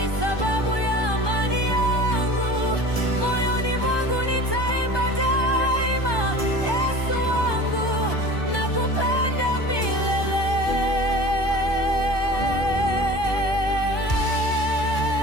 sababu ya amani yangu. Moyoni mwangu nitaimba daima, Yesu wangu, nakupenda milele.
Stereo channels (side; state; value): right; late; 1.2 ms